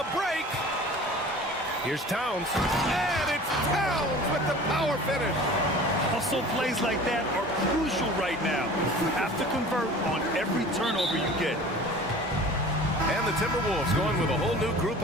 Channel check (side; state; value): both; normal; correlation 0.42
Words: break. Here's Towns. And it's Towns with the power finish. Hustle plays like that are crucial right now. You have to convert on every turnover you get. And the Timberwolves going with a whole new group